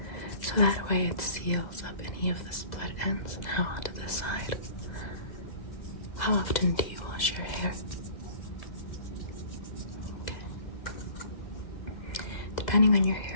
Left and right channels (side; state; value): right; late; 2.0 ms